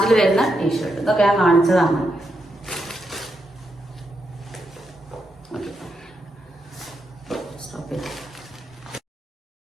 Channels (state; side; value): normal; both; correlation 0.83